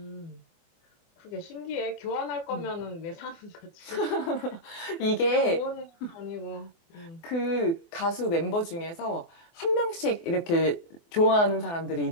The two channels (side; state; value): right; late; 24 ms